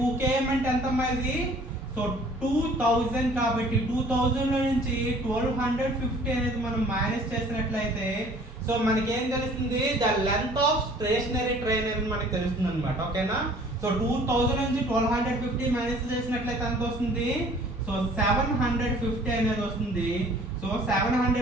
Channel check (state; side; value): normal; both; correlation 0.52